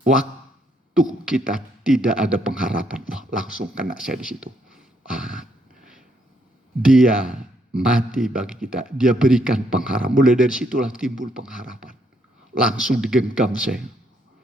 waktu kita tidak ada pengharapan, wah langsung kena saya di situ. Dia mati bagi kita, dia berikan pengharapan. Mulai dari situlah timbul pengharapan. Langsung digenggam saya.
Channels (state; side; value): normal; both; correlation 0.72